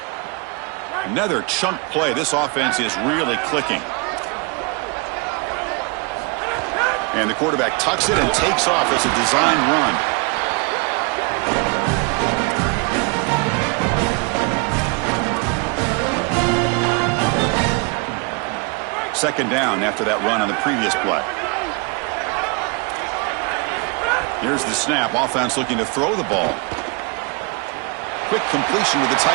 Another chunk play. This offense is really clicking. And the quarterback tucks it and takes off as a design run. Second down after that run on the previous play. Here's the snap. Offense looking to throw the ball. Quick completion to the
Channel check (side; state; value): left; quieter; 31.2 dB